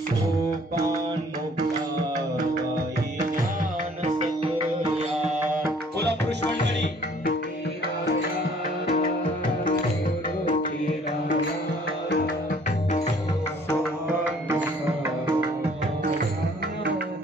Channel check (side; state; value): both; normal; correlation 0.57